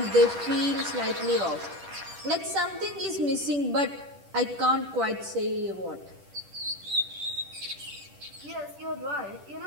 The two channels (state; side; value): late; left; 10 ms